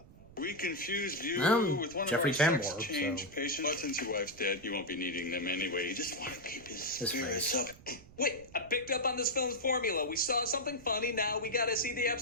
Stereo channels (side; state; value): right; noise; rumble, 21 dB below the sound